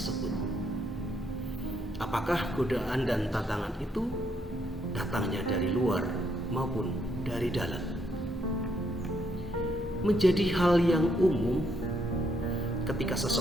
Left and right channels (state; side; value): normal; both; correlation 0.74